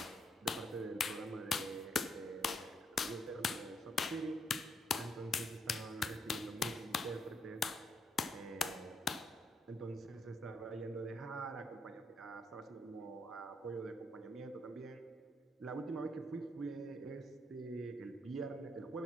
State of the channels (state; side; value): normal; both; correlation 0.74